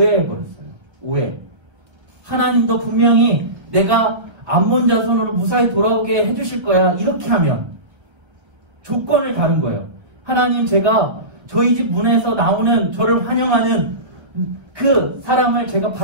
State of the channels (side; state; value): left; late; 1.5 ms